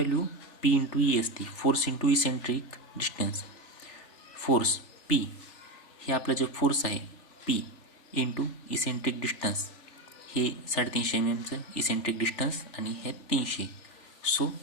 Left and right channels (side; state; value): right; late; 3.4 ms